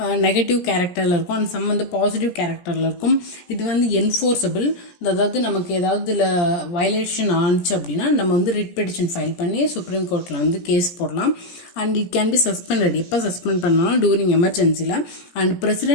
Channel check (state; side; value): late; right; 17 ms